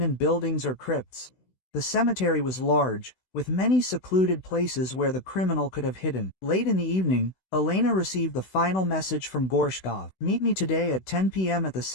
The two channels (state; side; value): late; right; 16 ms